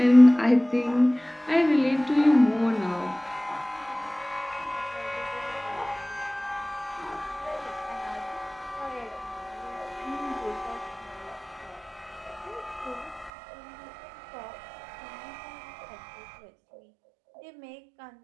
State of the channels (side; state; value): left; drops out; at 13.3 s